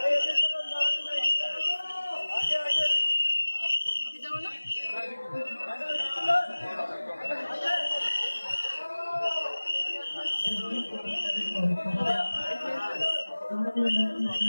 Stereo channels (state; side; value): inverted; both; correlation -1.00